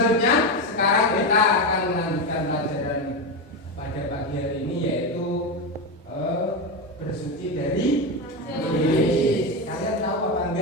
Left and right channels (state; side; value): normal; both; correlation 0.14